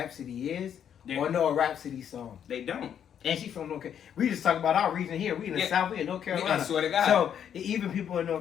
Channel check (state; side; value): quieter; right; 8.9 dB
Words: is or know a Rhapsody song? They don't. And she's from North Carolina. We just talk about our region here. We in the South, we in North Carolina. I swear to God. So even people in